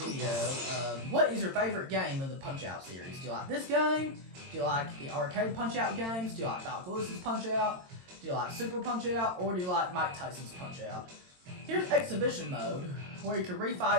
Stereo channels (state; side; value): late; left; 22 ms